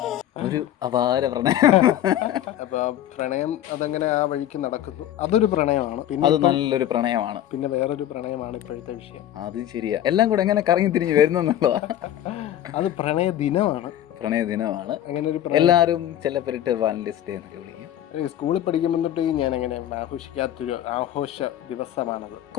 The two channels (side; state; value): right; quieter; 11.9 dB